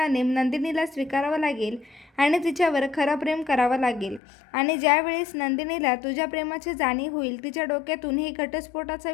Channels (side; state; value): right; drops out; at 4.2 s